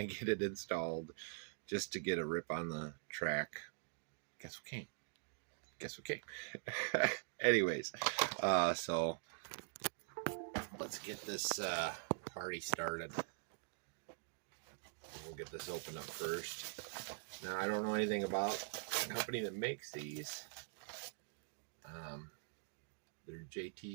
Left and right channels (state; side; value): silent; left; digital silence